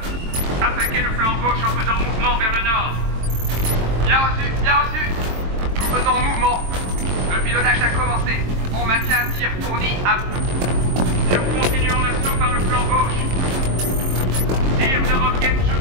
Attaquez le flanc gauche en faisant mouvement vers le nord. Bien reçu, bien reçu. Nous faisons mouvement. Le pilonnage a commencé. On maintient un tir fourni à bout. Nous continuons l'assaut par le flanc gauche. Tir de roquettes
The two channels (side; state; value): left; late; 22 ms